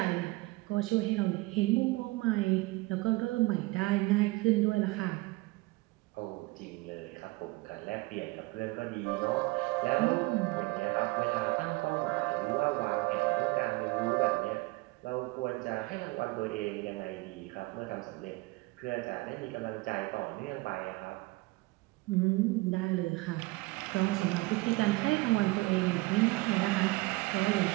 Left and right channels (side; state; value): left; quieter; 22.3 dB